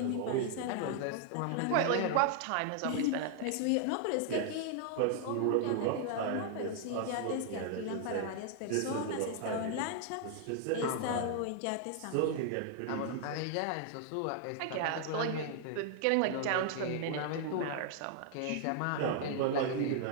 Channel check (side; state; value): both; different; correlation 0.00